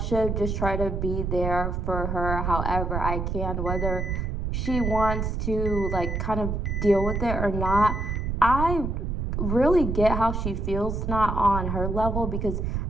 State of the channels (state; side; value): noise; right; rumble, 1 dB below the sound